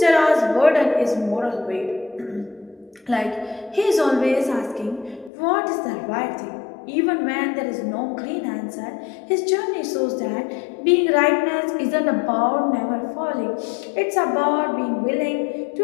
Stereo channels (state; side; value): drops out; right; at 5.3 s